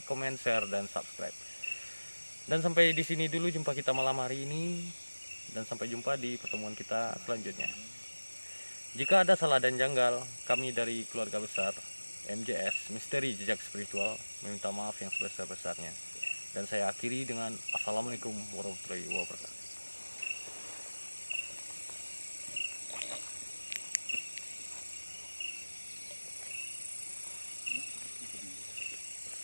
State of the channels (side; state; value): both; inverted; correlation -1.00